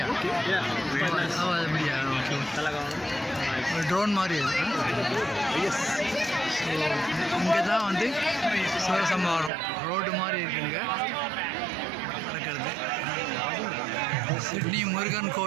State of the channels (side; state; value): left; drops out; at 9.5 s